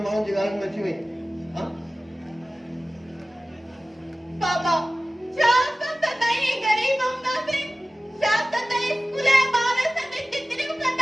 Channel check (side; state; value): both; normal; correlation 0.97